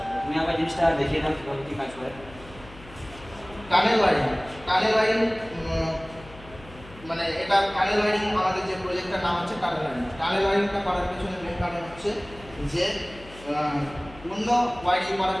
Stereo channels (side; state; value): left; noise; hum, 20 dB below the sound